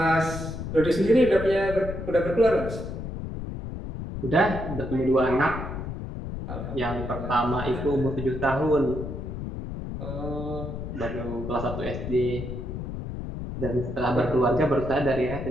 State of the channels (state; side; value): noise; left; rumble, 7 dB below the sound